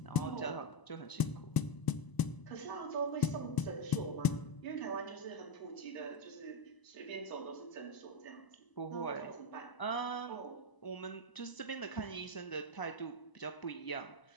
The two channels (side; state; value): right; late; 1.0 ms